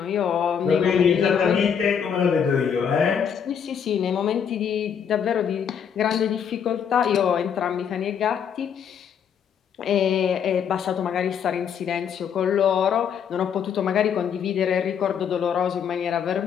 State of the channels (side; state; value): right; quieter; 7.7 dB